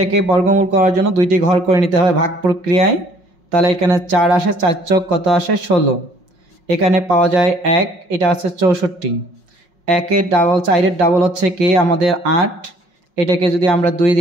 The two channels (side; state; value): left; late; 5.5 ms